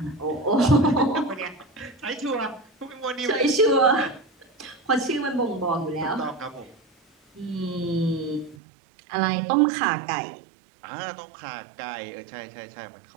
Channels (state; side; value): drops out; left; at 8.6 s